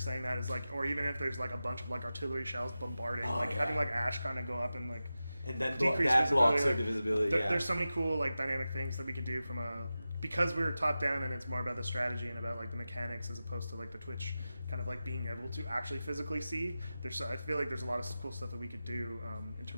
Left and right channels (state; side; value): inverted; both; correlation -0.93